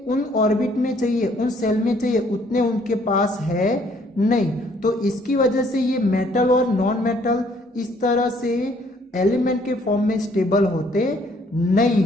उन ऑर्बिट में चाहिए, उन सेल में चाहिए, उतने उनके पास है नहीं। तो इसकी वजह से ये मेटल और नॉन मेटल इस तरह से एलिमेंट के फॉर्म में स्टेबल होते नहीं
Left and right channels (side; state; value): both; normal; correlation 0.63